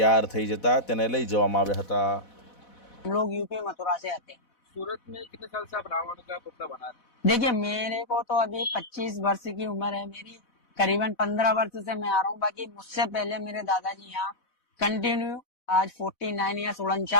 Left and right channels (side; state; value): right; late; 4.1 ms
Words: થઈ જતા તેને લઈ જવામાં આવ્યા હતા. हम लोग यूपी मथुरा से आते हैं। सूरत में कितने साल से आप रावण का पुतला बना रहे हैं? देखिए, मेरे को तो अभी 25 वर्ष की उम्र है मेरी। करीबन 15 वर्ष से मैं आ रहा हूँ। बाकी मुझसे पहले मेरे दादाजी यहाँ कंटिन्यू आज 49 या